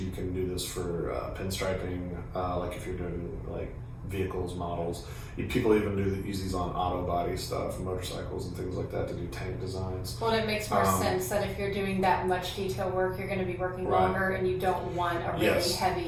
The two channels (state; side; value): identical; both; correlation 1.00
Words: can do this for pinstriping, if you're doing vehicles, models. People even use these on auto body stuff, motorcycles and things like that to do tank designs. Well, it makes more sense that if you're doing that much detail work, you're going to be working longer, and you don't want a really